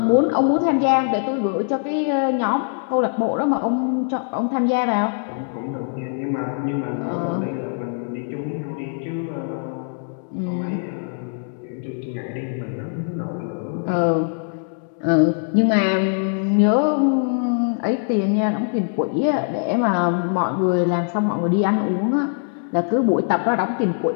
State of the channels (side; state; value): right; silent; digital silence